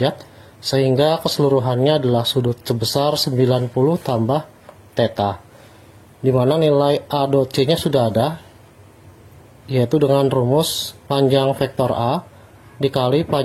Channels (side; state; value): both; identical; correlation 1.00